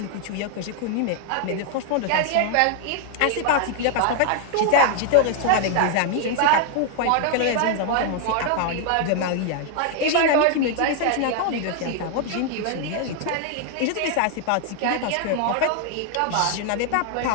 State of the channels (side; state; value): both; different; correlation 0.00